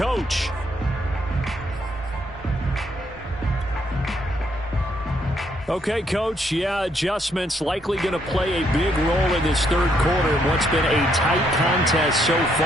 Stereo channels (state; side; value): normal; both; correlation 0.72